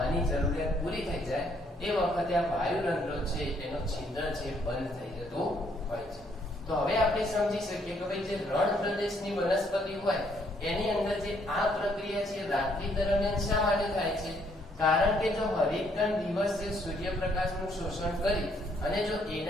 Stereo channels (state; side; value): normal; both; correlation 0.69